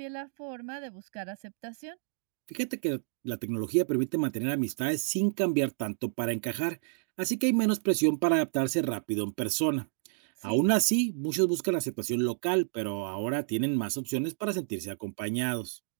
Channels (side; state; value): left; silent; digital silence